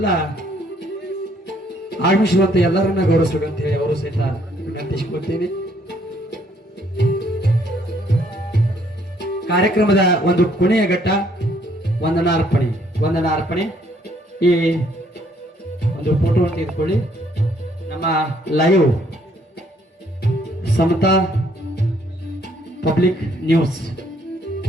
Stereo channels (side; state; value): both; normal; correlation 0.66